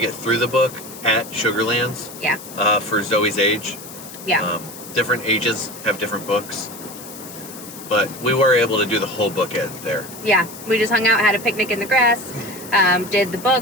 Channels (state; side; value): noise; left; hiss, 15 dB below the sound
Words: through the book at Sugarlands. Yeah. For Zoey's age. Yeah. Different ages have different books. But we were able to do the whole book there. Yeah, we just hung out, had a picnic in the grass, did the